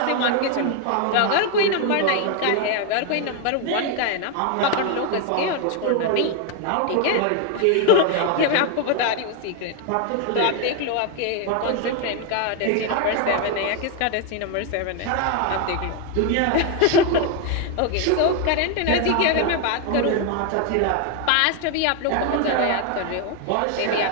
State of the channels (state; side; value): different; both; correlation 0.01